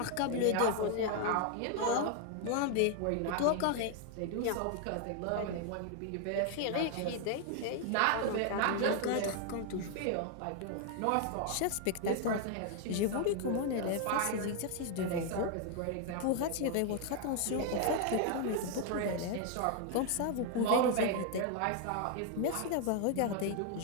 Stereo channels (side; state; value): both; different; correlation 0.00